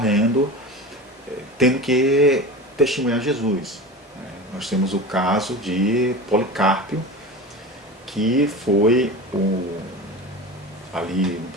tendo que testemunhar Jesus. Nós temos o caso de Policarpo, que foi ali no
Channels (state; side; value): normal; both; correlation 0.31